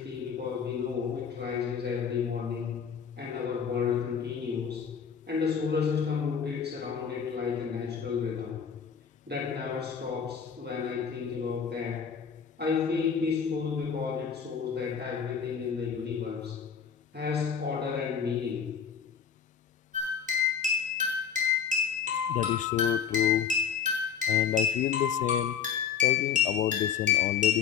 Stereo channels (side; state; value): right; quieter; 7.3 dB